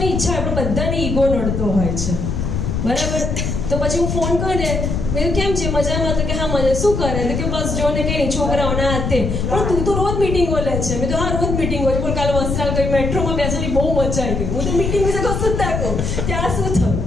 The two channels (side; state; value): left; noise; rumble, 1 dB below the sound